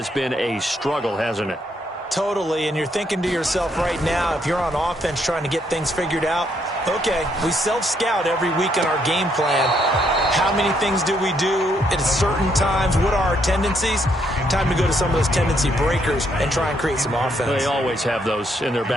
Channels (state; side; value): normal; both; correlation 0.73